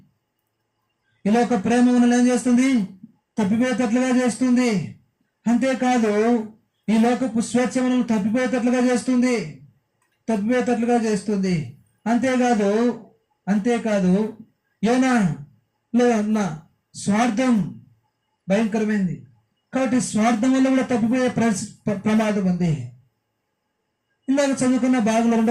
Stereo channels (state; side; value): identical; both; correlation 1.00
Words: ఈ లోక ప్రేమ మనల్ని ఏం చేస్తుంది? తప్పిపోయేటట్లుగా చేస్తుంది. అంతేకాదు ఈ లోకపు స్వేచ్ఛ మనల్ని తప్పిపోయేటట్లుగా చేస్తుంది. అంతేకాదు యోనాలో ఉన్న స్వార్థం భయంకరమైంది. కాబట్టి స్వార్థం వల్ల కూడా తప్పిపోయే ప్రమాదం ఉంది. ఇందాక చదువుకున్న భాగంలో